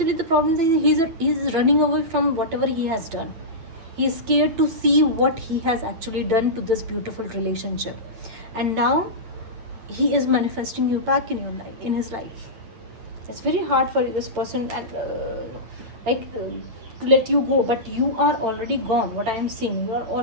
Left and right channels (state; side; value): late; left; 9.0 ms